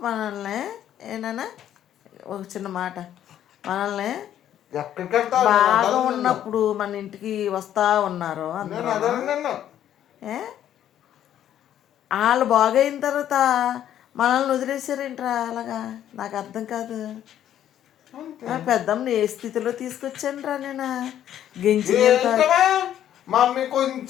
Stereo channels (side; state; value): right; quieter; 11.0 dB